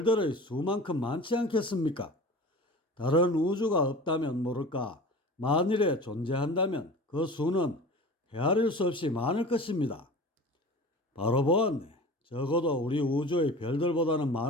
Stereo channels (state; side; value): normal; both; correlation 0.37